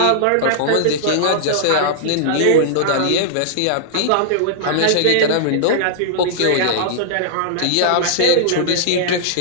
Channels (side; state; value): both; different; correlation -0.02